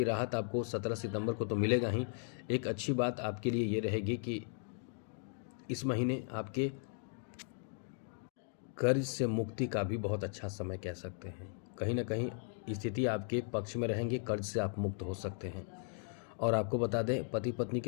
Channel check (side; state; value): right; silent; 53 dB below the other